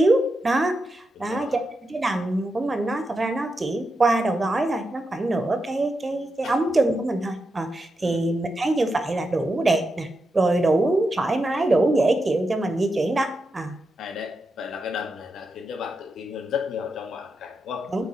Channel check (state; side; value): normal; both; correlation 0.87